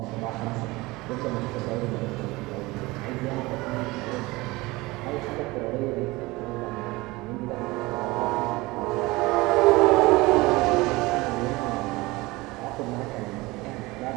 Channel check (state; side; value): quieter; left; 21.7 dB